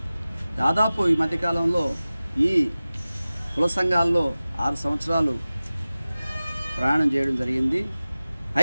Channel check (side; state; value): both; inverted; correlation -0.97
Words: దాదాపు ఈ మధ్యకాలంలో ఈ కుల సంఘాల్లో 6 సంవత్సరాలు ప్రయాణం చేయడం జరిగింది.